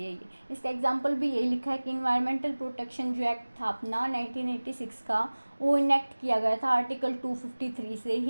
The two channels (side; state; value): both; inverted; correlation -1.00